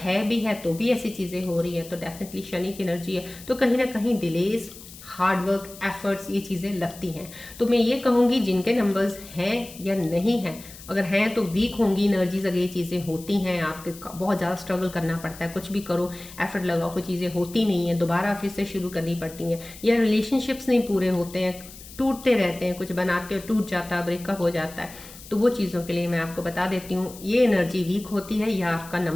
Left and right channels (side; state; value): left; noise; hiss, 17 dB below the sound